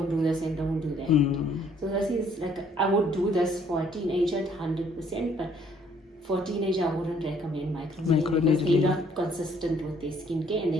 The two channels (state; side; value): normal; both; correlation 0.63